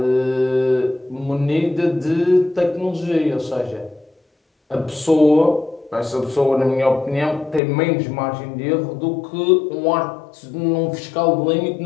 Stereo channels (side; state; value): right; drops out; at 7.6 s